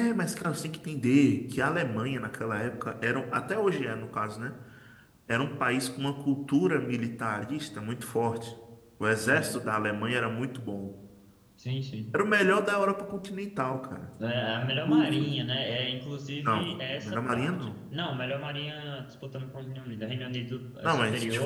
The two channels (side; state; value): both; identical; correlation 1.00